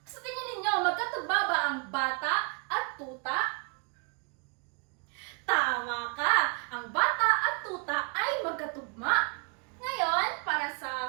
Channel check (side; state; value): left; quieter; 37.8 dB